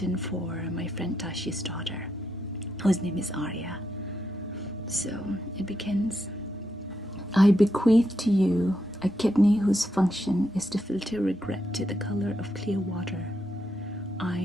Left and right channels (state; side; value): normal; both; correlation 0.82